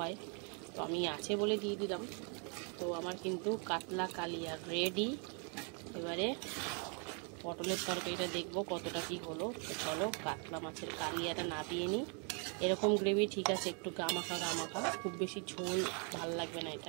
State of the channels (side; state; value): left; quieter; 38.3 dB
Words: তো আমি আছে বলে দিয়ে দিলাম। তো আমার কিন্তু কাতলা কালিয়া রেডি। এবারে পটলের তরকারিটা দেখবো কতটা কি হলো। তো চলো কাতলা মাছের কালিয়াটা নাবিয়ে নিই। এরকম গ্রেভি ঠিক আছে, একটু গামাখা, খুব বেশি ঝোল ভাল লাগবে না